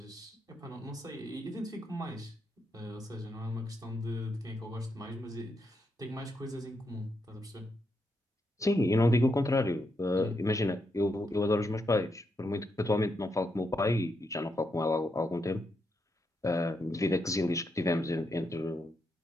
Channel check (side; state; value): both; normal; correlation 0.81